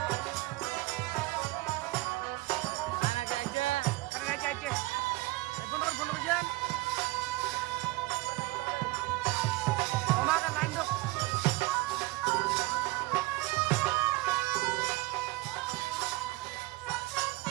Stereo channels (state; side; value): quieter; left; 21.0 dB